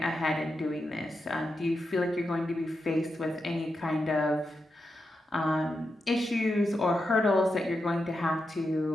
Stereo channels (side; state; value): both; normal; correlation 0.87